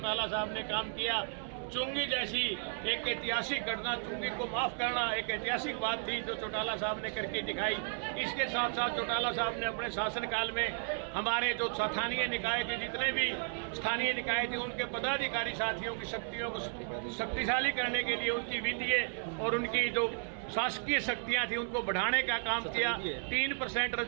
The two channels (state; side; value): silent; left; 55 dB below the other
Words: साहब ने काम किया। चुंगी जैसी एक ऐतिहासिक घटना, चुंगी को माफ करना एक ऐतिहासिक बात थी जो चौटाला साहब ने करके दिखाई। इसके साथ साथ चौटाला साहब ने अपने शासनकाल में हमारे जो स्थानीय निकाय के जितने भी स्थानीय निकाय थे उनके पदाधिकारी साथियों की शक्तियों को शक्तिशाली करने के लिए उनकी वित्तीय और उनकी जो शासकीय शक्तियां थी उनको बढ़ाने का काम किया। 3%